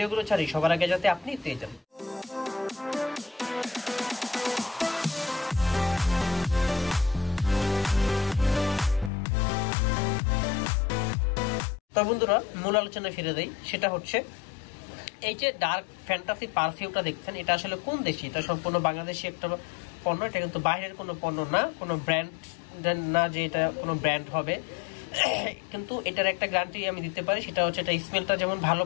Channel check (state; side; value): drops out; right; at 9.1 s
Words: ছাড়ি সবার আগে যাতে আপনি পেয়ে যান। তো বন্ধুরা, মূল আলোচনায় ফিরে দেই। সেটা হচ্ছে এই যে ডার্ক ফ্যান্টাসি পারফিউমটা দেখছেন, এটা আসলে কোন দেশি? এটা সম্পূর্ণ বাংলাদেশি একটা পণ্য। এটা কিন্তু বাইরের কোনো পণ্য না, কোনো ব্র্যান্ড না যে এটা কোনো ব্র্যান্ড হবে। কিন্তু এটার একটা গ্যারান্টি আমি দিতে পারি, সেটা হচ্ছে এটা স্মেলটা যেমন ভালো